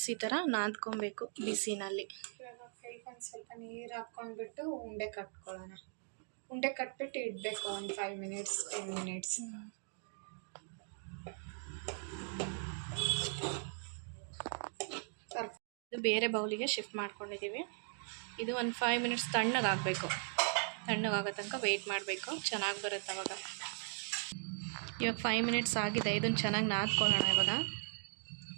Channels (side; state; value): left; silent; 52 dB below the other